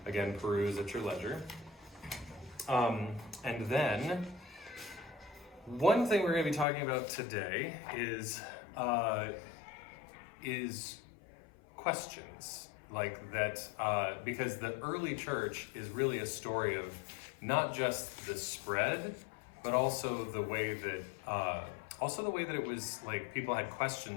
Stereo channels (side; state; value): right; drops out; at 6.7 s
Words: again peruse at your leisure. And then, one thing we're going to be talking about today is questions like that, because the early church is really a story of not just the spread, but also the way that it was like people had